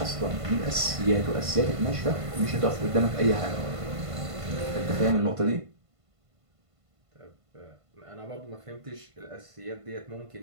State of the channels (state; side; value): late; left; 1.5 ms